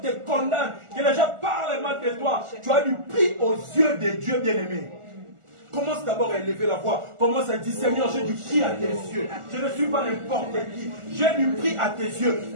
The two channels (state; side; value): late; left; 1.4 ms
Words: te condamnent, que les gens parlent mal de toi. Tu as du prix aux yeux de Dieu, bien-aimé. Commence d'abord à élever la voix. Commence à dire, Seigneur, j'ai du prix à tes yeux. Je ne suis pas n'importe qui. J'ai du prix à tes